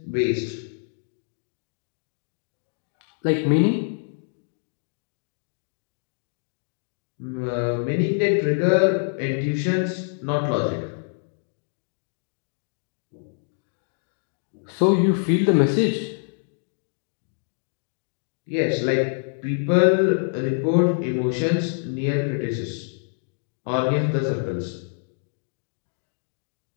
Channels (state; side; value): silent; right; digital silence